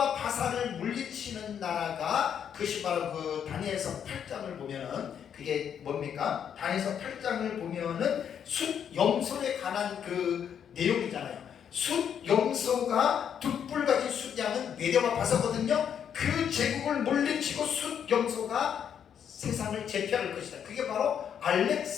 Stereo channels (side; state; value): right; quieter; 8.4 dB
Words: 바사를 물리치는 나라가 그것이 바로 그 다니엘서 8장을 보면은 그게 뭡니까? 다니엘서 8장을 보면은 숫염소에 관한 그 내용이잖아요. 숫염소가 둑불같이 숫양은 메대와 바사거든요. 그 제국을 물리치고 숫염소가 세상을 제패할 것이다. 그게 바로